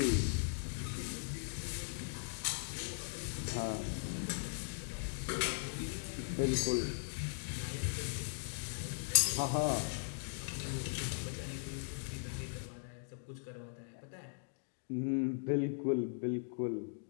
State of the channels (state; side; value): silent; right; digital silence